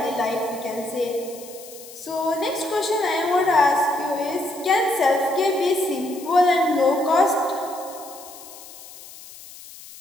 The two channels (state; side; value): noise; left; hiss, 17 dB below the sound